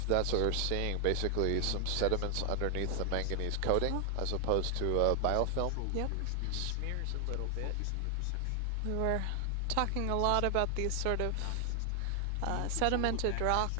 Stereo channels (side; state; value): both; different; correlation 0.00